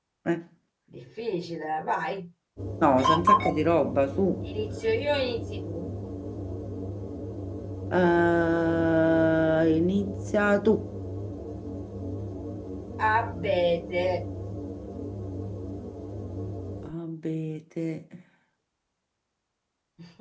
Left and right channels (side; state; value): both; identical; correlation 1.00